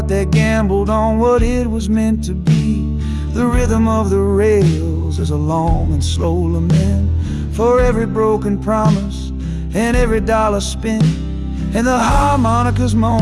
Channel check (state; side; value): identical; both; correlation 1.00